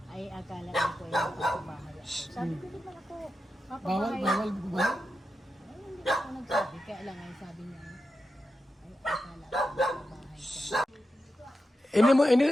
Ay, akala ko ay mapapabahay ako. Sabi ko, di man ako Bawal, mapapabahay. bawal po ba? Ay, hindi ako nagsabi. Kaya lang ay sabi niya, ay akala ko mapapabahay ka.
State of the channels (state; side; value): normal; both; correlation 0.89